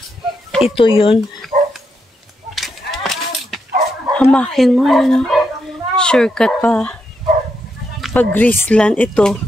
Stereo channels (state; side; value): normal; both; correlation 0.82